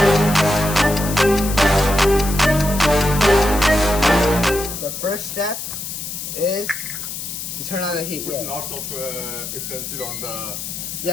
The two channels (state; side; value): noise; left; hiss, 7 dB below the sound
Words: The first step is to turn on the heat. Put lots of utensil on the...